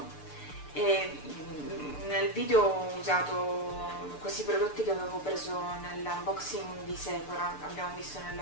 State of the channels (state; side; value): late; right; 6.8 ms